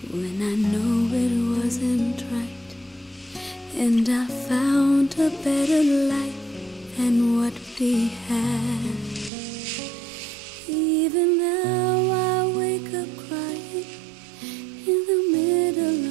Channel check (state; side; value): drops out; left; at 9.3 s